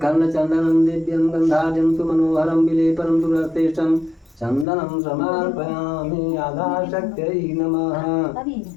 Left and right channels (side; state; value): right; drops out; at 4.7 s